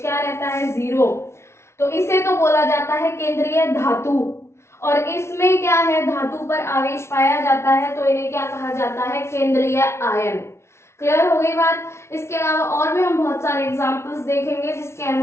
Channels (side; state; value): right; late; 0.13 ms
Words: क्या रहता है 0, तो इसे तो बोला जाता है केंद्रीय धातु, और इसमें क्या है धातु पर आवेश पाया जाता है तो इन्हें क्या कहा जाता है केंद्रीय आयन। क्लियर हो गई बात। इसके अलावा और भी हम बहुत सारे एग्जांपल्स देखेंगे जिसके